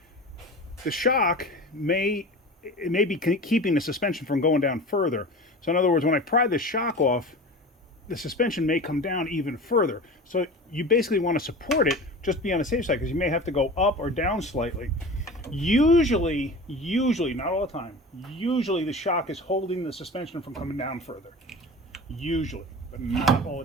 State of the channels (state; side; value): normal; both; correlation 0.34